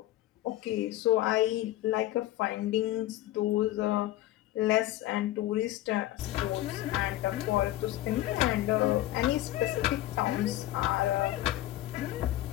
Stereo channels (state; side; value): quieter; right; 15.1 dB